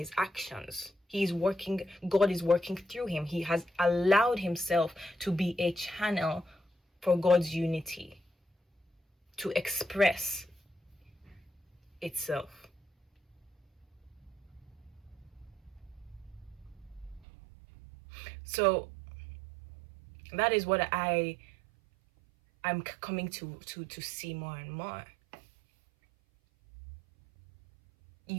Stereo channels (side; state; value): left; drops out; at 17.2 s